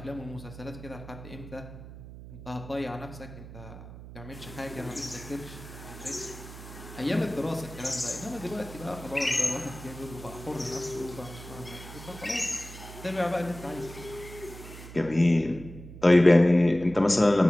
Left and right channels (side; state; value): right; noise; hum, 14 dB below the sound